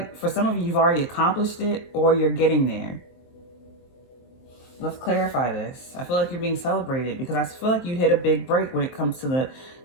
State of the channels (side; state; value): right; late; 23 ms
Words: for some of you, you've already accomplished it, or you're getting there. Let's clarify this. I feel like you're being celebrated because I feel like you hit a big break when it comes to